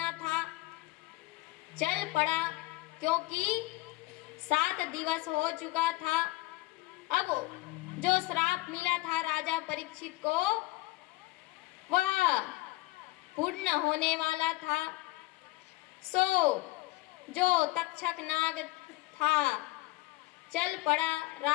था चल पड़ा, क्योंकि 7 दिवस हो चुका था। अब जो श्राप मिला था राजा परीक्षित को वह पूर्ण होने वाला था। सो जो तक्षक नाग था चल पड़ा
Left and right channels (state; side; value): quieter; right; 20.1 dB